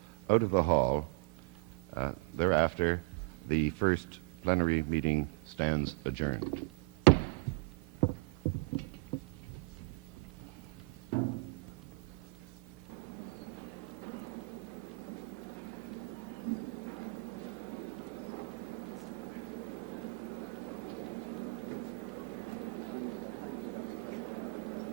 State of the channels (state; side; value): quieter; left; 30.6 dB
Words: out of the hall. Thereafter, the first plenary meeting stands adjourned.